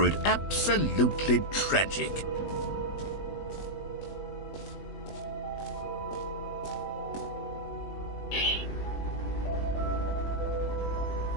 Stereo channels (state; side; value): late; right; 20 ms